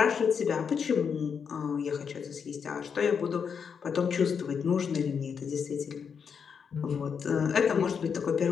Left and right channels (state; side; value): quieter; right; 6.6 dB